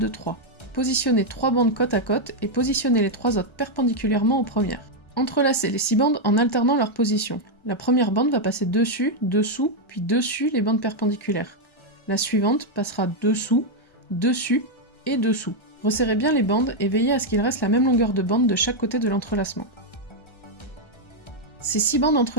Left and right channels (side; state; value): right; late; 1.3 ms